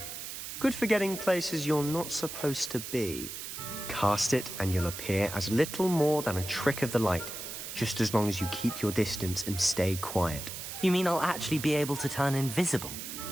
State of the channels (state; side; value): noise; right; hiss, 8 dB below the sound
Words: Good for getting places you're not supposed to be. Cast it and you'll appear as little more than a trick of the light, just as long as you keep your distance and stay quiet. You mean I'll actually be able to turn invisible?